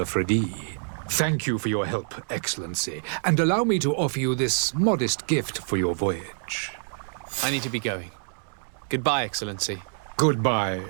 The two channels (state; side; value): silent; left; digital silence